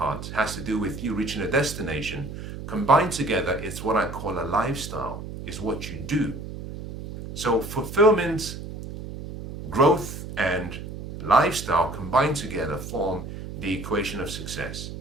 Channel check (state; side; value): noise; right; hum, 9 dB below the sound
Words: has to do with you reaching a destination. Combined together, it's what I call a lifestyle, is what you do. So fulfillment, growth, and lifestyle combined together form the equation of success.